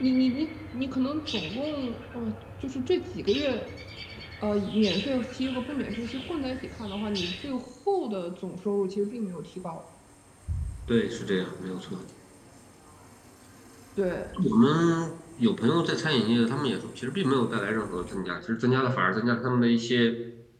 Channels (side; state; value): both; identical; correlation 1.00